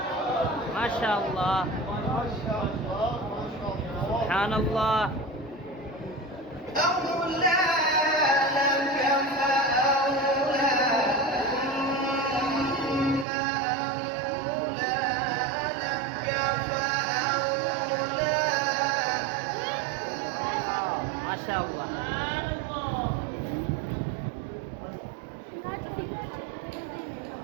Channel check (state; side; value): drops out; left; at 13.2 s